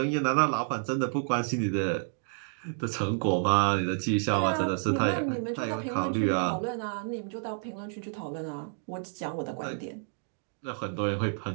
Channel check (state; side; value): silent; left; 58 dB below the other